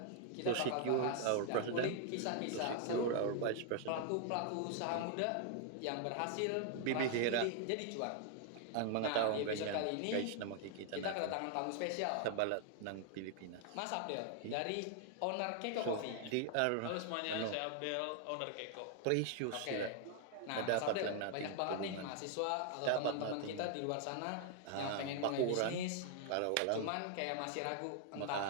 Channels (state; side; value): different; both; correlation 0.00